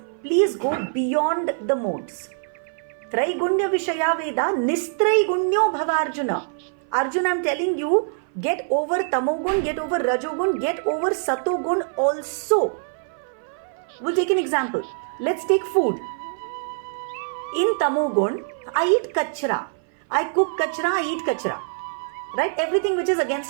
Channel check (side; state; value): left; silent; 57 dB below the other